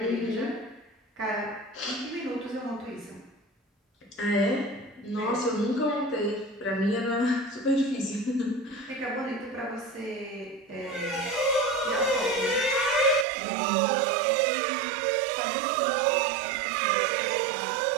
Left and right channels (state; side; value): drops out; left; at 13.2 s